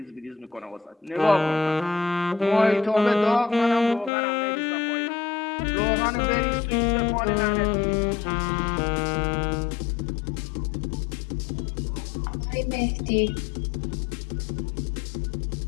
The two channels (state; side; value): drops out; right; at 4.1 s